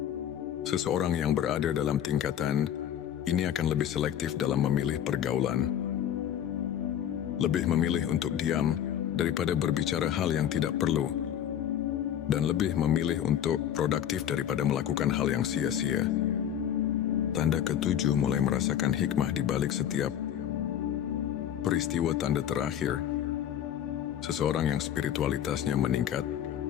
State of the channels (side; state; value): right; quieter; 10.0 dB